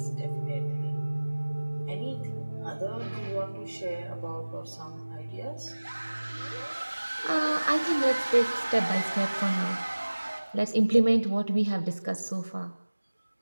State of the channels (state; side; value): inverted; both; correlation -1.00